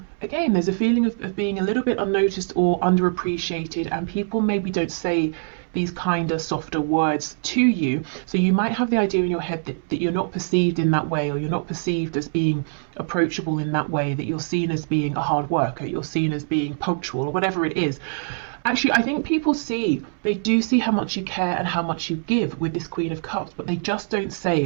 again, there's a feeling of being a little bit unnoticed or underappreciated, and people maybe don't say these kinder, softer words to you. So you might have the idea in your head that you're not perceived in that way, or you're not perceived as being approachable in that way, that you're seen as being a hard worker, you're seen as being punctual, or whatever it is. Actually, I think people they do see how much you care and how much you give with this Queen of Cups, but they just don't say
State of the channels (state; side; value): silent; left; 63 dB below the other